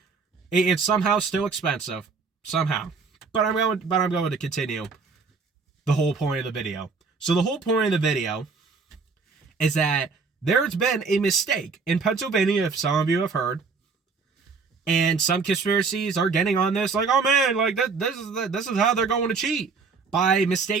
it's somehow still expensive somehow. But I'm going to continue the whole point of the video. So the whole point of the video is that there's been a mistake in Pennsylvania, if some of you have heard. And some conspiracies are getting on this, like, oh man, like this is how they're going to cheat by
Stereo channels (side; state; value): left; quieter; 4.8 dB